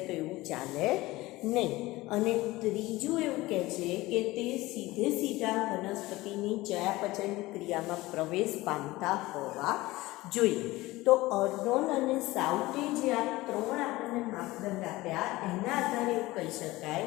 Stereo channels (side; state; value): right; quieter; 19.3 dB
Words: તો એવું ચાલે નહીં. અને ત્રીજું એવું કહે છે કે તે સીધા વનસ્પતિની ચયાપચય ક્રિયામાં પ્રવેશ પામતા હોવા જોઈએ. તો અર્નોન અને સાઉથે જે આ 3 આપણને માપદંડ આપ્યા એના આધારે એવું કહી શકાય